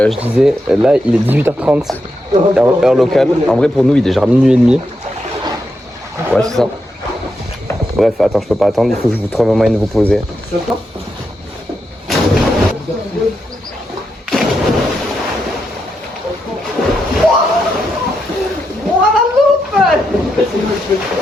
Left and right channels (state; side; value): normal; both; correlation 0.84